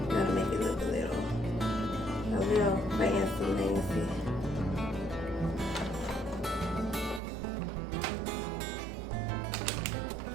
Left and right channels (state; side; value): drops out; left; at 7.2 s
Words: gotta make it look a little fancy, fancy.